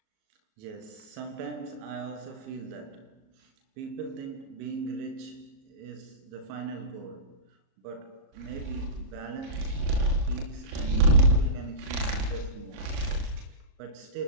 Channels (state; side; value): late; left; 37 ms